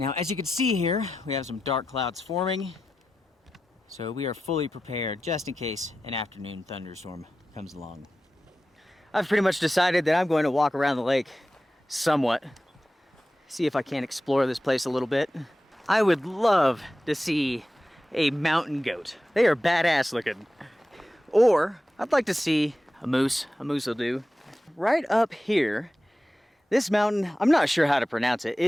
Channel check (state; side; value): normal; both; correlation 0.92